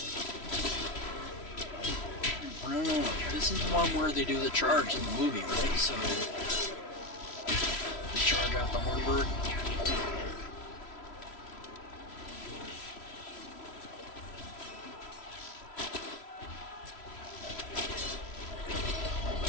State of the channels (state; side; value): late; right; 3.0 ms